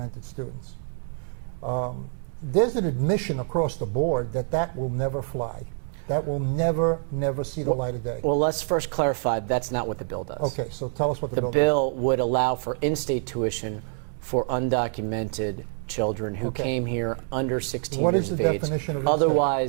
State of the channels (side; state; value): left; silent; digital silence